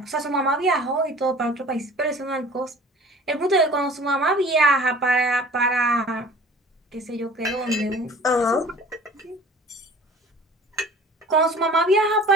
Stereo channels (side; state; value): both; normal; correlation 0.46